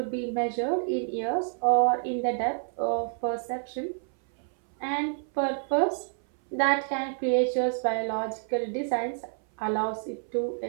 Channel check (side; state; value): left; silent; 59 dB below the other